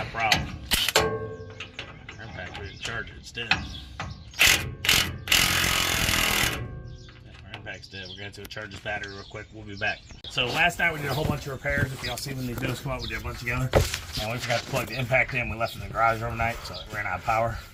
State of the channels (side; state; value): both; identical; correlation 1.00